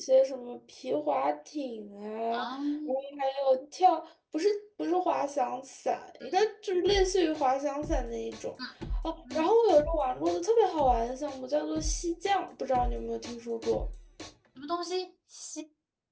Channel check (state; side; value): identical; both; correlation 1.00